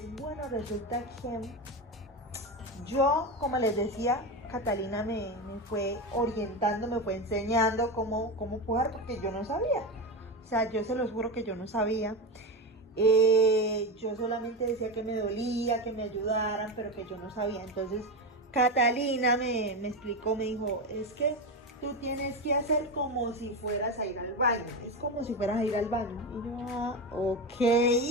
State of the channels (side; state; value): both; normal; correlation 0.17